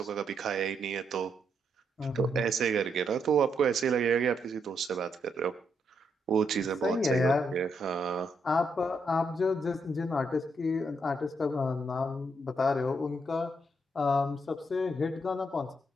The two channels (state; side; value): normal; both; correlation 0.78